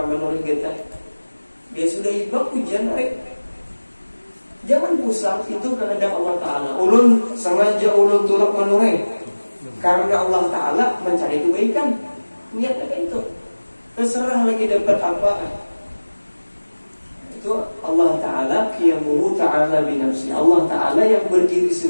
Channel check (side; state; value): both; inverted; correlation -1.00